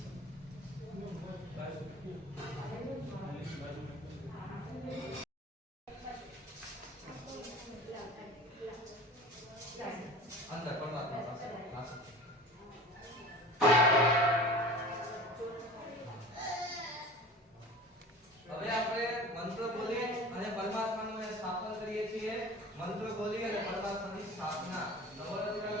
હવે આપણે મંત્ર બોલી અને પરમાત્માનું સ્થાપન કરીએ છીએ. મંત્ર બોલી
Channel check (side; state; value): both; normal; correlation 0.38